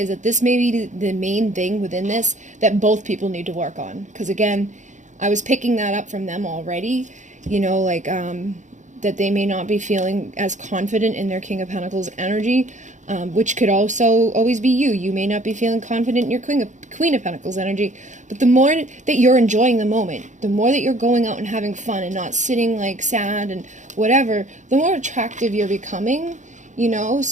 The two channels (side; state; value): left; late; 0.35 ms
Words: that this may be the main thing within this that both people need to work on. Because again, I was picking that up from them already. You know, like, that they may not be feeling as confident in their King of Pentacles energy, which could also always be you. You may not be feeling confident in your Queen of Pentacles energy, but the more that you're enjoying the moment, the more that you're going out and having fun and not sitting like sad and whatever, the more attractive you're becoming, you know?